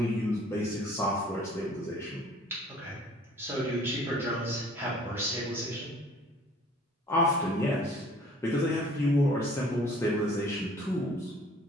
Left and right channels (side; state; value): both; normal; correlation 0.53